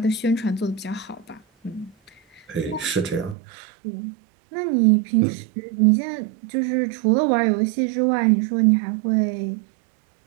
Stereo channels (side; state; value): left; drops out; at 3.4 s